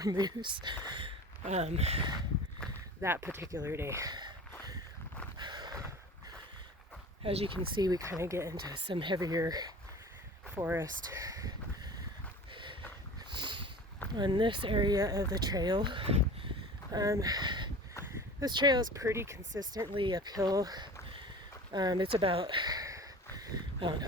moose that particular day. As you can see, we kind of get into some heavier forest on this area of the trail. This trail is pretty consistently uphill. It's about,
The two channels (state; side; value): normal; both; correlation 0.38